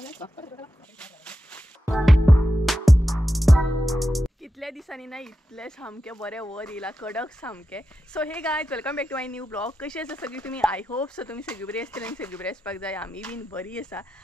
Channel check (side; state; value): both; normal; correlation 0.90